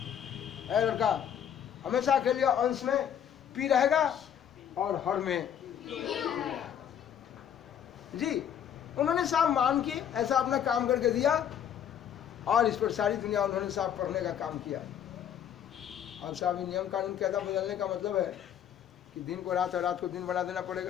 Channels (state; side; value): quieter; right; 9.2 dB